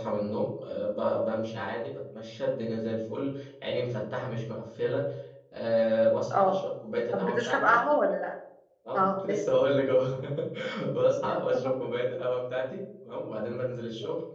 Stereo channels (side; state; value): both; identical; correlation 1.00